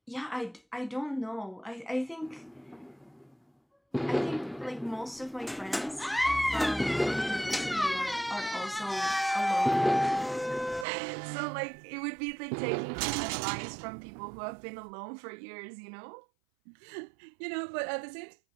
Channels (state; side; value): drops out; left; at 10.9 s